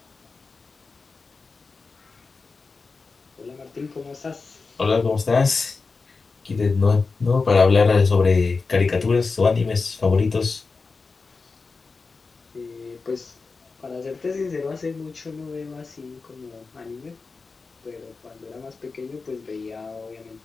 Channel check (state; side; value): quieter; right; 4.3 dB